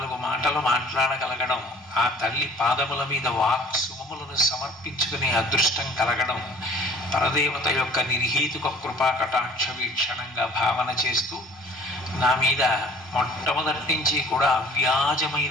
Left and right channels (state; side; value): normal; both; correlation 0.50